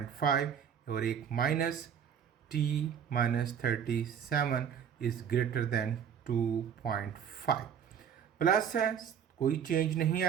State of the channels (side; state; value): left; quieter; 8.2 dB